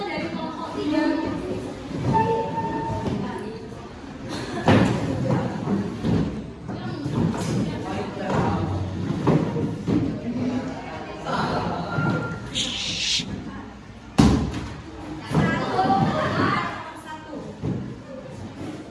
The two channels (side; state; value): both; identical; correlation 1.00